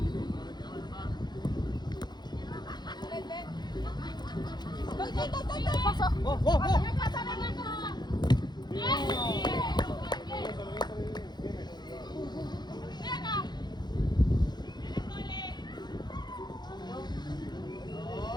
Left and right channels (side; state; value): right; late; 0.21 ms